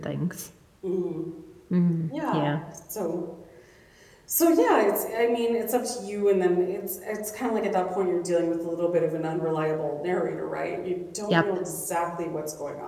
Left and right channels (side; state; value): both; identical; correlation 1.00